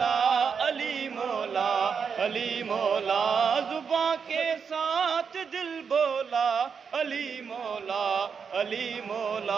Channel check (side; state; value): left; quieter; 6.2 dB